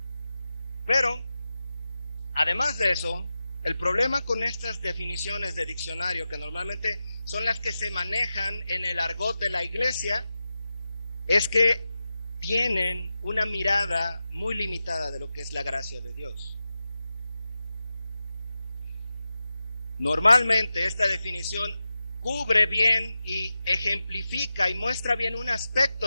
Pero, además de eso, el problema con estas definiciones de diccionario, que normalmente son las que se manejan en el argot de la iglesia, es que tienen una mirada muy limitada de lo que es la gracia de Dios. Normalmente esta definición cubre bien y ejemplifica y muestra bien un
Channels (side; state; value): both; inverted; correlation -0.93